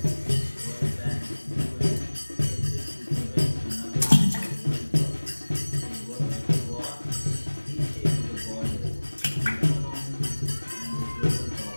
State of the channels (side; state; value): both; inverted; correlation -1.00